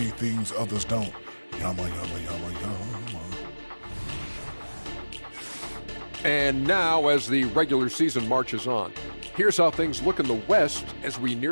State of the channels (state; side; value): inverted; both; correlation -1.00